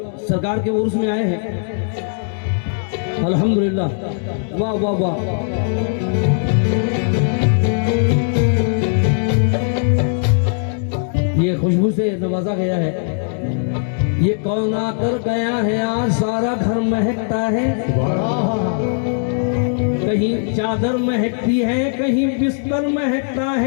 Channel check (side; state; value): right; silent; 67 dB below the other